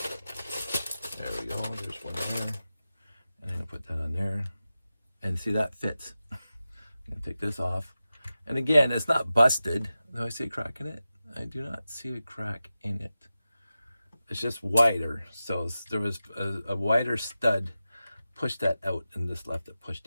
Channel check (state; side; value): inverted; both; correlation -0.93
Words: There we go. There's one there. And I'm going to put that on there. And see, that fits. I'm going to take this off. And again, it's not busted. Do I see a crack in it? I do not see a crack in it. It's just wider. So there was a wider stud. Pushed that out, and this left it